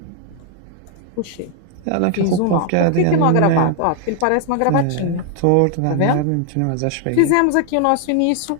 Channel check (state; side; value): different; both; correlation 0.00